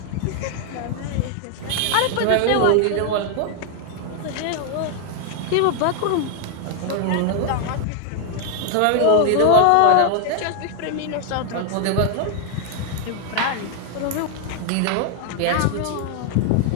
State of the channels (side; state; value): both; different; correlation 0.00